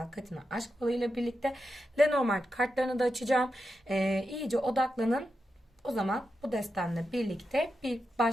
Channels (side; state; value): both; normal; correlation 0.88